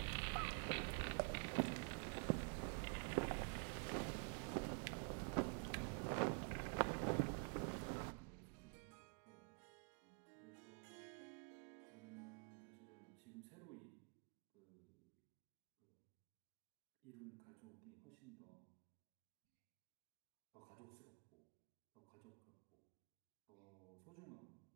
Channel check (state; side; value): quieter; left; 38.3 dB